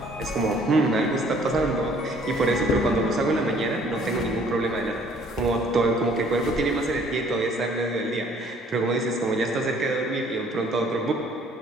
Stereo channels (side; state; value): both; normal; correlation 0.58